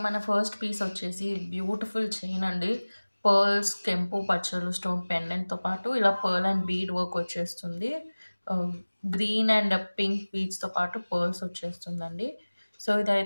మన ఫస్ట్ పీస్ వచ్చేసి బ్యూటిఫుల్ చైన్ అండి. పర్ల్స్, కెంపు పచ్చలు స్టోన్ పెండెంట్తో పాటు ఇలా పర్ల్ అండ్ బీడ్ వర్క్ వచ్చేస్తుంది. గ్రీన్ అండ్ పింక్ బీడ్స్తో పాటు పర్ల్స్ వచ్చేస్తుందండి. సో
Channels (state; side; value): inverted; both; correlation -1.00